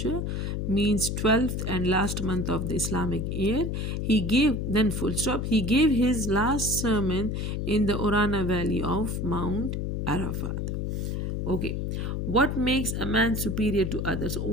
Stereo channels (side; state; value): left; noise; hum, 2 dB below the sound